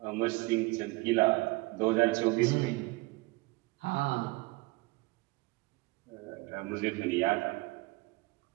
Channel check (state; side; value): quieter; left; 23.5 dB